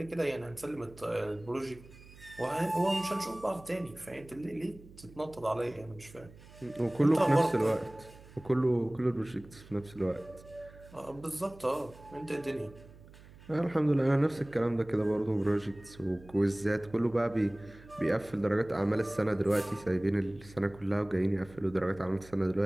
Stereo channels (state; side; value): noise; right; hum, 21 dB below the sound